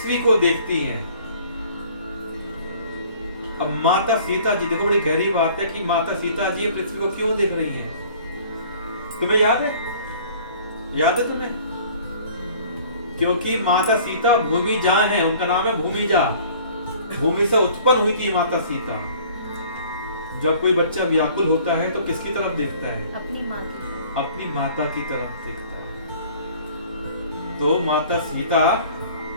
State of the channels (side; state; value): both; inverted; correlation -0.51